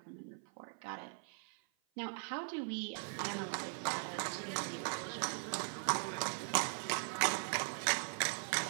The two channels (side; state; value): left; silent; 51 dB below the other